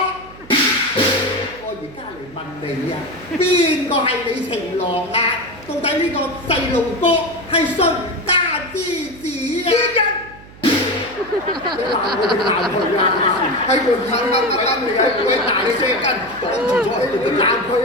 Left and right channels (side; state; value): right; noise; hum, 20 dB below the sound